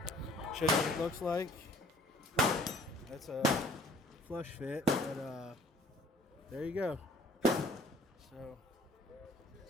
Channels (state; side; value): normal; both; correlation 0.54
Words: you what it looks like. That's a flush fit, but there you go. So